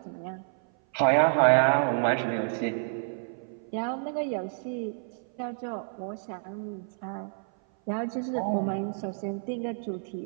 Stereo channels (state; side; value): silent; left; 57 dB below the other